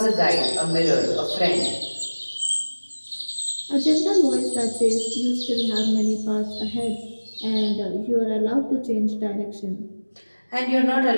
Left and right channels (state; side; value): inverted; both; correlation -1.00